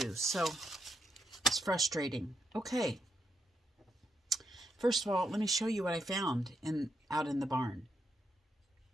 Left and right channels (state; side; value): normal; both; correlation 0.81